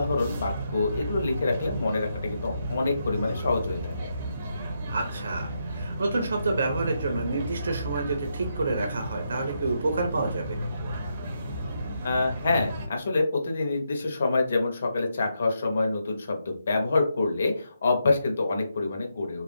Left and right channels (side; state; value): both; inverted; correlation -0.81